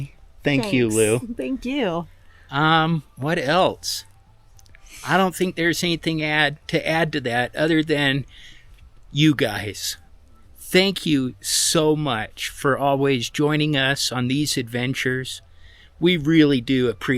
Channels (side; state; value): both; identical; correlation 1.00